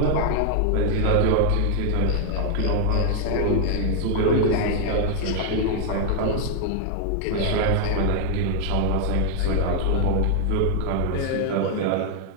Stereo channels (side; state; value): both; different; correlation 0.00